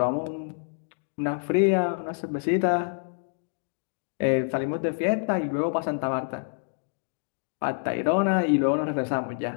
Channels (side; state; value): right; silent; digital silence